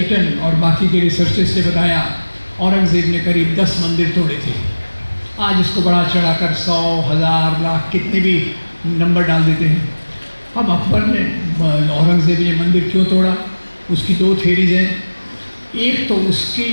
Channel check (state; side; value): inverted; both; correlation -1.00